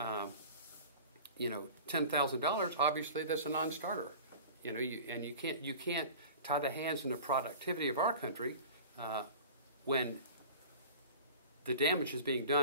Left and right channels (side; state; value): both; inverted; correlation -0.39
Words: obviously that's a non-starter. You can't tie the hands in the productivity of our country when the damage is being